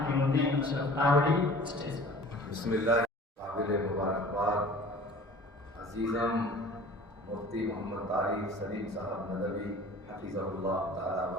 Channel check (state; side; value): normal; both; correlation 0.45